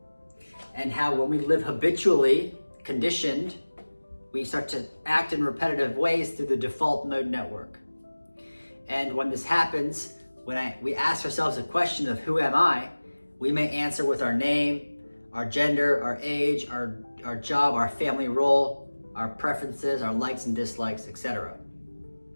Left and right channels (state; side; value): inverted; both; correlation -1.00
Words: and how when we live habitually conditioned, we start to act in repetitive ways through the default mode network. And when this happens, when we ask ourselves a question of who am I, we may answer with our name, our gender, our age, our job, our family role, our preferences, our likes and dislikes, etc.